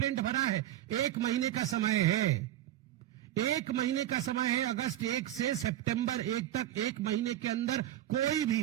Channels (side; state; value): left; quieter; 12.9 dB